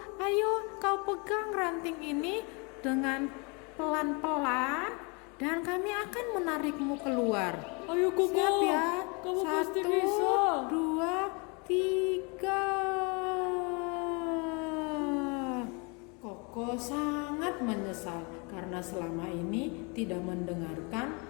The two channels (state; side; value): quieter; right; 32.0 dB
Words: ayo kau pegang ranting ini dengan pelan-pelan dan kami akan menarikmu keluar. Ayo Koko, Siap ya? kamu 1, pasti bisa. 2, 3. Koko sangat menyesal karena selama ini tidak mendengarkan